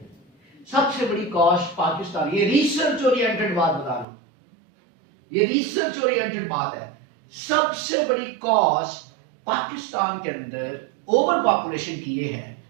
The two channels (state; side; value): drops out; left; at 4.0 s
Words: सबसे बड़ी कॉज पाकिस्तान। ये रिसर्च ओरिएंटेड बात बता रहा हूं, ये रिसर्च ओरिएंटेड बात है। सबसे बड़ी कॉज पाकिस्तान के अंदर ओवर पॉपुलेशन की ये है,